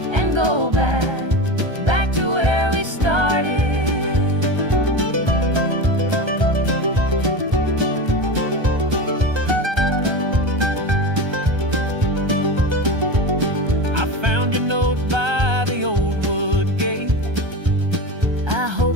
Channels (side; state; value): left; late; 1.3 ms